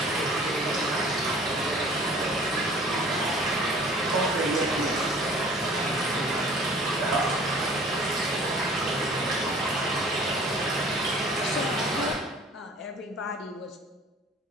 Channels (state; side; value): normal; both; correlation 0.49